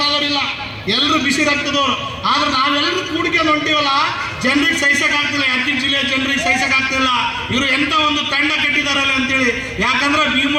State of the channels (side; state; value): both; identical; correlation 1.00